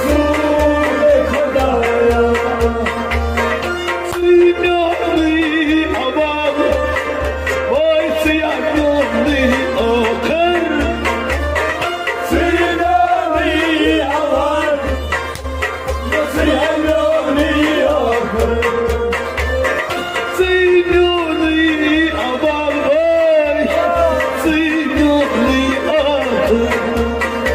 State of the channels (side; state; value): both; identical; correlation 1.00